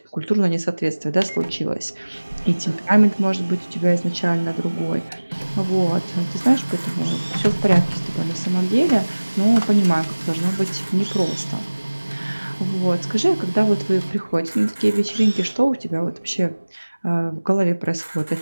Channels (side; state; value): both; inverted; correlation -1.00